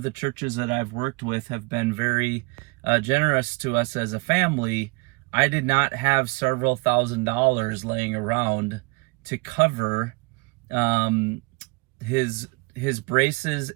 the churches that I've worked with have been very generous to us as a family, I did not have several $1,000s laying around to cover his braces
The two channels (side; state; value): left; quieter; 27.7 dB